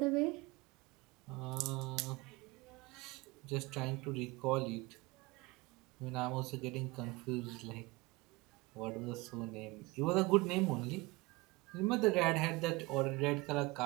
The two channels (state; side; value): quieter; left; 23.0 dB